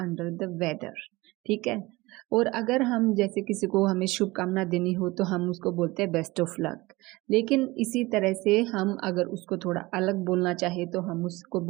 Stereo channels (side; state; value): left; quieter; 21.3 dB